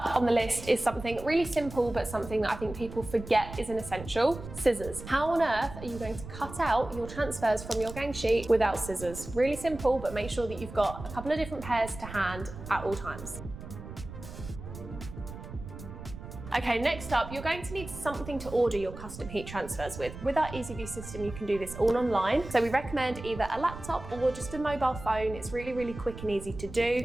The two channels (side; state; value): right; noise; rumble, 12 dB below the sound